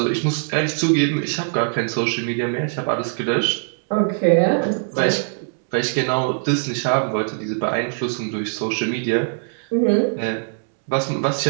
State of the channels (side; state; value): left; silent; digital silence